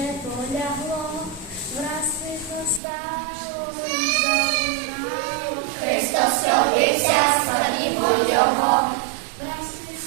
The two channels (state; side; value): drops out; left; at 2.8 s